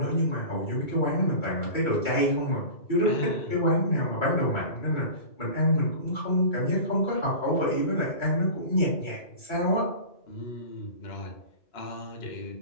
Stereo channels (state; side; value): late; right; 2.3 ms